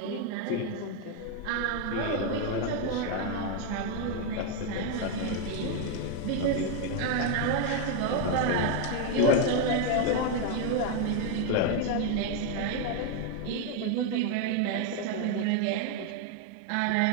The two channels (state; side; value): different; both; correlation 0.01